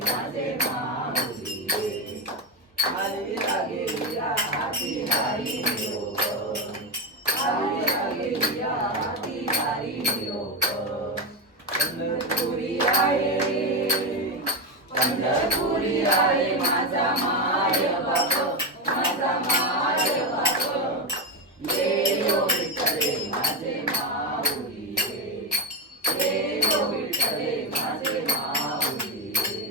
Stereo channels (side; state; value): both; normal; correlation 0.12